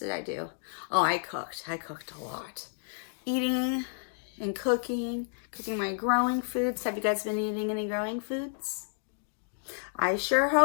I do? Oh, I cooked. I cooked a lot. Eating and cooking my growing foods. Have you guys been eating any growing foods? I sure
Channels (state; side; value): silent; right; digital silence